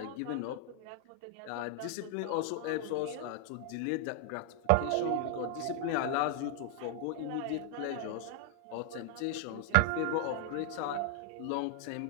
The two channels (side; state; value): both; different; correlation 0.00